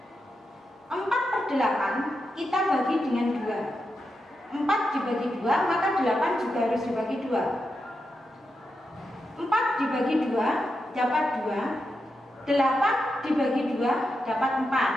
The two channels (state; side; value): normal; both; correlation 0.87